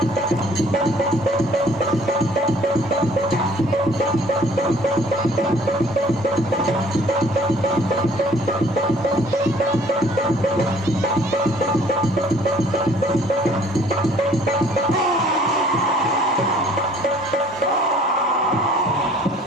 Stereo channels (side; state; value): both; normal; correlation 0.56